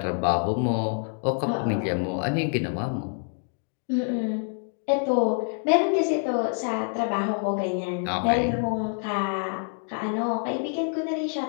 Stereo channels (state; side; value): silent; right; 60 dB below the other